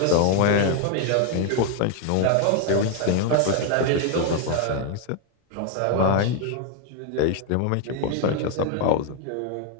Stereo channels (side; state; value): both; different; correlation 0.01